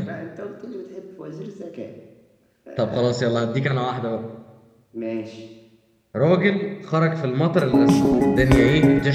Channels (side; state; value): both; identical; correlation 1.00